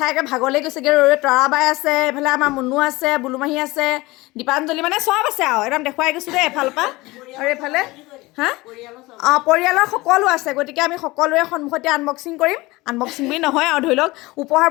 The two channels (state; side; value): quieter; right; 21.2 dB